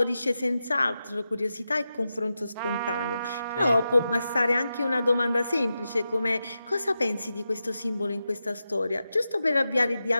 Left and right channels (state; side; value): inverted; both; correlation -0.90